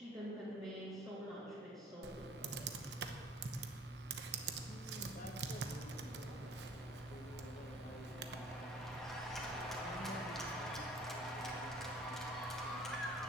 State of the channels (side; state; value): both; normal; correlation 0.53